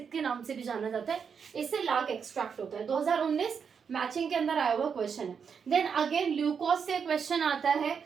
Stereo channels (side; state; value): left; quieter; 6.6 dB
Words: के नाम से भी जाना जाता है, इससे लाख एक्सट्रैक्ट होता है। 2019 मैचिंग के अंदर आया हुआ क्वेश्चन है। देन अगेन ल्यूकोस से क्वेश्चन आता है